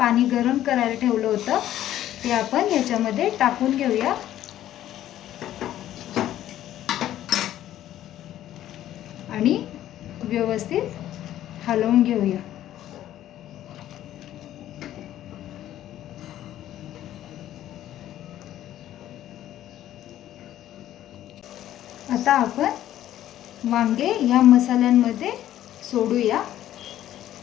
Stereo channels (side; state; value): right; quieter; 12.6 dB